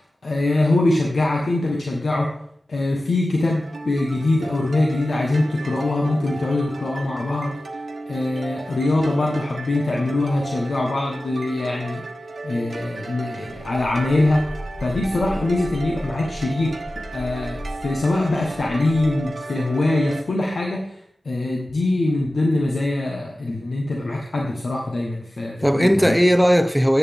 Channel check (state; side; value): normal; both; correlation 0.95